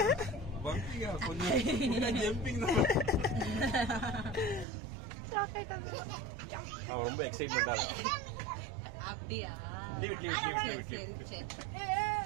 பம்பியா கொஞ்சம் ஜம்பிங் தான். அவன் ரொம்ப எக்ஸைட்மெண்டா இருக்கான். அப்படியே லீவ்.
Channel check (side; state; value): left; drops out; at 4.7 s